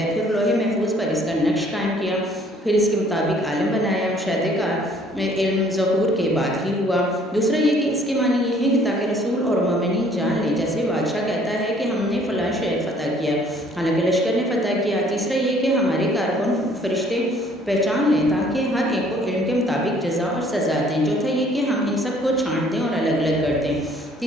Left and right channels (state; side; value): normal; both; correlation 0.59